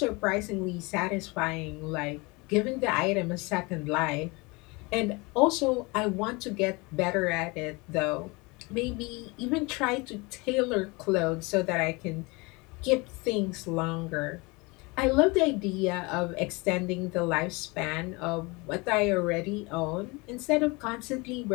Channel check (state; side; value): quieter; right; 26.4 dB